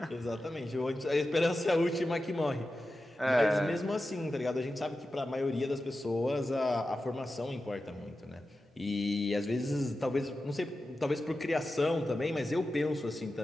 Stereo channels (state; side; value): normal; both; correlation 0.92